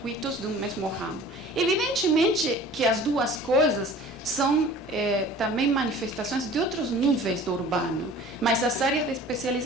de um mesmo ramo. Evidentemente que as duas coisas são também manifestações de outros níveis do urbano, mas as áreas de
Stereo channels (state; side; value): normal; both; correlation 0.45